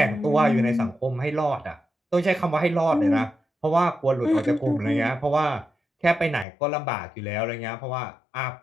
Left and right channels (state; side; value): drops out; right; at 6.5 s